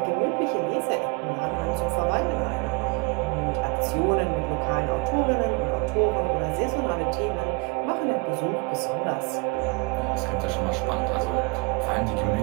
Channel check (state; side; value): quieter; left; 28.3 dB